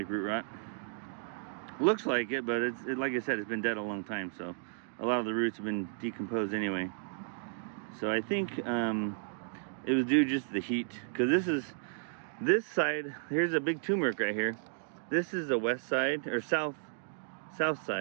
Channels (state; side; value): silent; left; digital silence